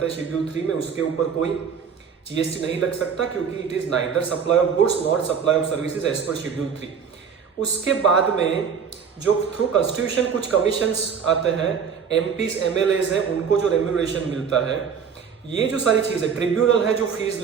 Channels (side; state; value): left; quieter; 6.8 dB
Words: हैं शेड्यूल 3 में, उसके ऊपर कोई जीएसटी नहीं लग सकता क्योंकि it is neither supply of goods not supply of services as per schedule 3। उसके बाद में जो थ्रू कॉन्स्टिट्यूशन कुछ कमीशंस आते हैं, एमपीज एमएलएज हैं, उनको जो रेम्यूनरेशन मिलता है, ये जो सारी चीजें, ट्रिब्यूनल है जो फीस